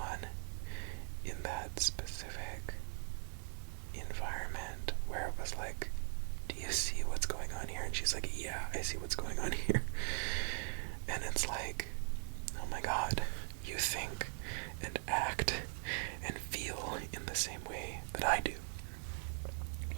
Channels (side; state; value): left; silent; 51 dB below the other